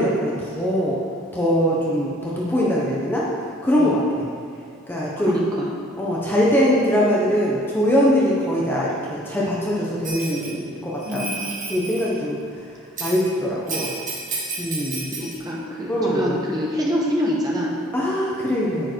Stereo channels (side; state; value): both; normal; correlation 0.57